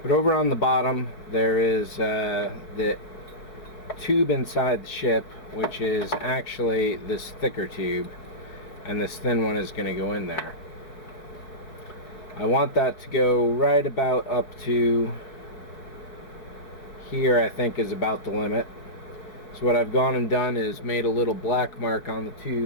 But over on the bottom there is the tube inside the ship, which is actually this thicker tube, and this thin one is going to go in there. I want that to go right about up to here. I think is about the limit. So what I've gone and done is made a little black mark on the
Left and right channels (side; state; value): right; late; 4.6 ms